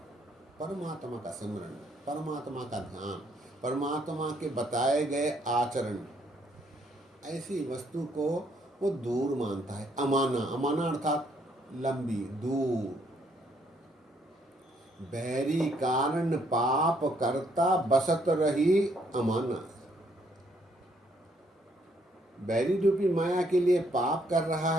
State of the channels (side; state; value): both; normal; correlation 0.70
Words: परमात्मा का सिमरन, परमात्मा का ध्यान, परमात्मा के बताए गए आचरण। ऐसी वस्तु को वो दूर मानता है। अमाना, अमाना अर्थात लंबी, दूर। बैरी कारण पाप करता बसत रही अमाना। बैरी रूपी माया के लिए पाप कर रहा